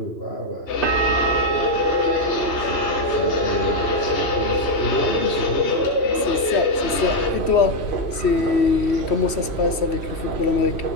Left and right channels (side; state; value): right; late; 3.1 ms